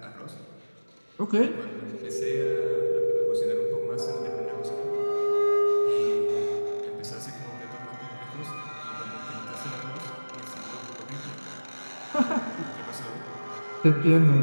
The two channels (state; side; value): inverted; both; correlation -1.00